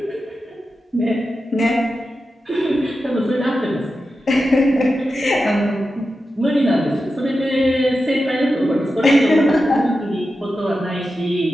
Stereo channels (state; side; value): normal; both; correlation 0.91